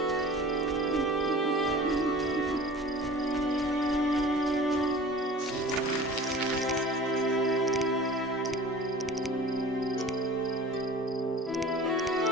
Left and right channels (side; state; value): both; normal; correlation 0.42